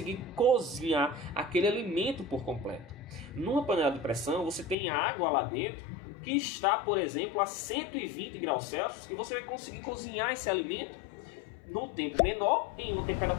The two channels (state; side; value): drops out; right; at 4.8 s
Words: cozinhar aquele alimento por completo. Numa panela de pressão, você tem água lá dentro, que está, por exemplo, a 120 graus Celsius, e você vai conseguir cozinhar esse alimento num tempo menor, em uma